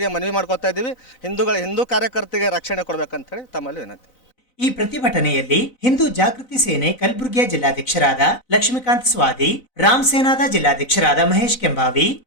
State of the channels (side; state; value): right; late; 4.0 ms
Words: ಮನವಿ ಮಾಡ್ಕೊತಾ ಇದ್ದೀವಿ. ಹಿಂದೂ ಕಾರ್ಯಕರ್ತರಿಗೆ ರಕ್ಷಣೆ ಕೊಡಬೇಕಂತೇಳಿ ತಮ್ಮಲ್ಲಿ ವಿನಂತಿ. ಈ ಪ್ರತಿಭಟನೆಯಲ್ಲಿ ಹಿಂದೂ ಜಾಗೃತಿ ಸೇನೆ ಕಲಬುರಗಿಯ ಜಿಲ್ಲಾಧ್ಯಕ್ಷರಾದ ಲಕ್ಷ್ಮೀಕಾಂತ್ ಸ್ವಾದಿ, ರಾಮ್ ಸೇನಾದ ಜಿಲ್ಲಾಧ್ಯಕ್ಷರಾದ ಮಹೇಶ್ ಕೆಂಬಾವಿ,